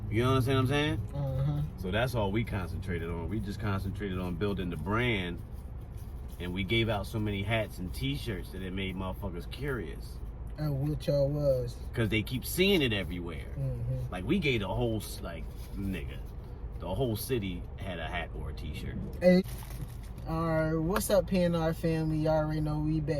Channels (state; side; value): identical; both; correlation 1.00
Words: You know what I'm saying? Uh-huh. So that's all we concentrated on. We just concentrated on building the brand. And we gave out so many hats and t-shirts that it made motherfuckers curious. And what y'all was. Cause they keep seeing it everywhere. Mm-hmm. Like we gave the whole, the whole city had a hat or a t-shirt. Hey. Alright, what's up PNR family? Y'all already know we